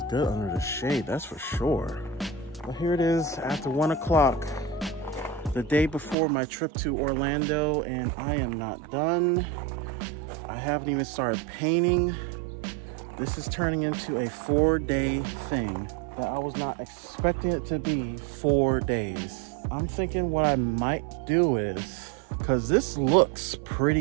good under the shade, that's for sure. But here it is after 1 o'clock. The day before my trip to Orlando, and I am not done. I haven't even started painting. This is turning into a 4-day thing that I was not expecting it to be 4 days. I'm thinking what I might do is, because this looks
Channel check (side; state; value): left; drops out; at 6.2 s